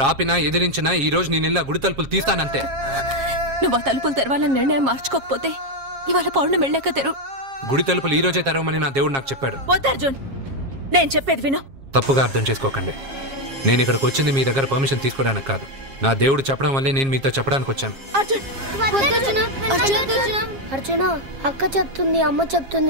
ఆపినా ఎదిరించినా ఈ రోజు నేను గుడి తలుపులు తీస్తానంతే. నువ్వు ఆ తలుపులు తెరవాలని నిర్ణయం మార్చుకోకపోతే ఇవాళ పౌర్ణమి వెళ్ళాక తెరు. గుడి తలుపులు ఈ రోజే తెరవమని నా దేవుడు నాకు చెప్పాడు. వద్దు అర్జున్, నేను చెప్పేది విను. తప్పుగా అర్థం చేసుకోకండి. నేను ఇక్కడికి వచ్చింది మీ దగ్గర పర్మిషన్ తీసుకోవడానికి కాదు. నా దేవుడు చెప్పడం వల్లే నేను మీతో చెప్పడానికి వచ్చాను. అర్జున, అక్క చెప్తుంది, అమ్మ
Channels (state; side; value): late; left; 7.4 ms